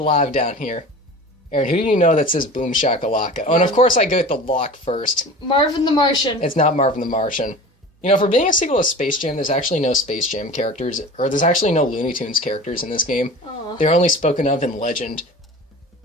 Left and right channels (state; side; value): normal; both; correlation 0.37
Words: down here. Aaron, who do you know that says boom shakalaka? Oh, and of course I go with the lock first. Marvin the Martian. It's not Marvin the Martian. You know, for being a sequel to Space Jam, there's actually no Space Jam characters, or there's actually no Looney Tunes characters in this game. Aw. They're only spoken of in legend,